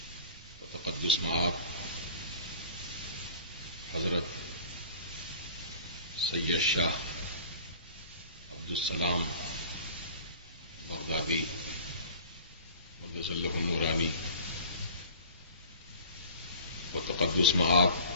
و تقدس مآب حضرت سید شاہ عبدالسلام بغدادی مدظ اللہ النورانی و تقدس مآب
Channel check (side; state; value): both; inverted; correlation -0.44